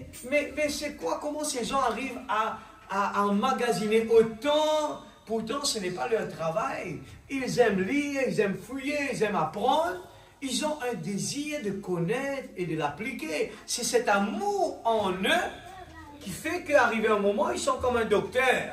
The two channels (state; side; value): identical; both; correlation 1.00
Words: c'est quoi? Comment ces gens arrivent à emmagasiner autant? Pourtant, ce n'est pas leur travail. Ils aiment lire, ils aiment fouiller, ils aiment apprendre. Ils ont un désir de connaître et de l'appliquer. C'est cet amour en eux qui fait qu'arrivé un moment, ils sont comme un